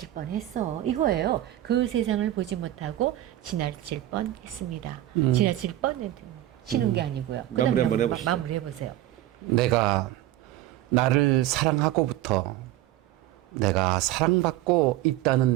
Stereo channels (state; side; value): quieter; left; 14.2 dB